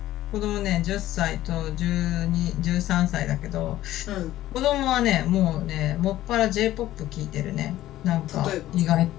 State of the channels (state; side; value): quieter; right; 14.4 dB